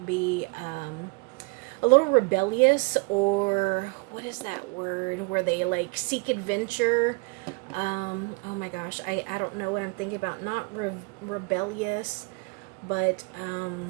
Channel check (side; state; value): left; quieter; 30.8 dB